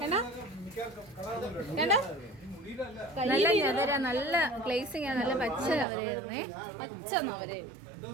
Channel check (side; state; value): left; drops out; at 5.9 s